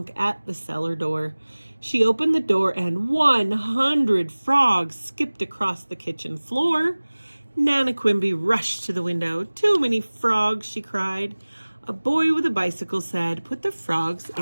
at the cellar door. She opened the door and 100 frogs skipped across the kitchen floor. Nana Quimby rushed to the window. "Too many frogs," she cried. A boy with a bicycle said, "Put the frogs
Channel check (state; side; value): inverted; both; correlation -1.00